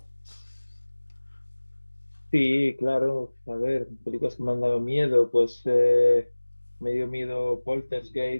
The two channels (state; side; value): inverted; both; correlation -1.00